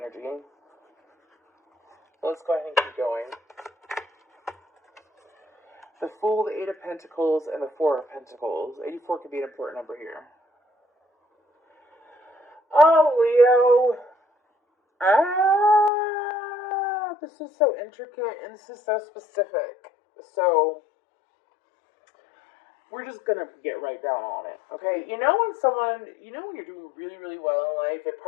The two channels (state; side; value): drops out; right; at 15.9 s